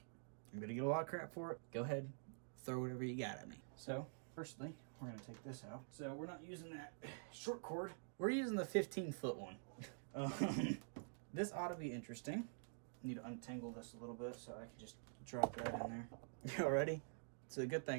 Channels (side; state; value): left; silent; digital silence